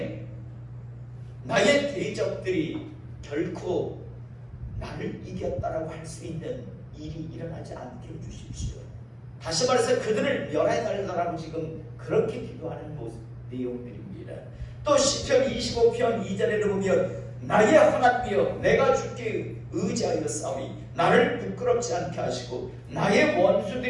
나의 대적들이 결코 나를 이겼다라고 할 수 있는 일이 일어나지 않게 해주십시오. 다시 말해서 그들을 멸해달라고 지금 그렇게 기도하는 내용들입니다. 또 시편 25편 2절에도 보면 나의 하나님이여 내가 주께 의지하여 싸우니 나를 부끄럽지 않게 하시고 나의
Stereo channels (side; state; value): both; identical; correlation 1.00